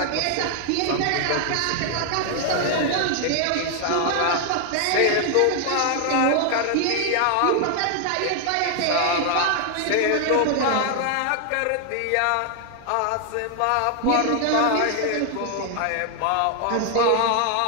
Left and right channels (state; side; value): different; both; correlation 0.00